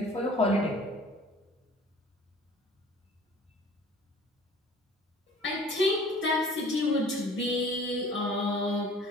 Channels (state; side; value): normal; both; correlation 0.48